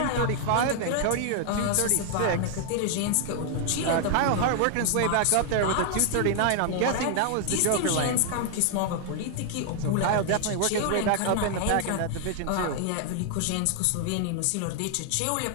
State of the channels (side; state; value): both; different; correlation 0.00